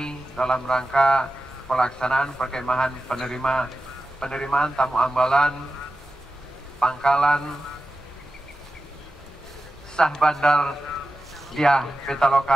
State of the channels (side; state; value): both; normal; correlation 0.93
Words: dalam rangka pelaksanaan perkemahan penerimaan tamu ambalan pangkalan Syah Bandar Diah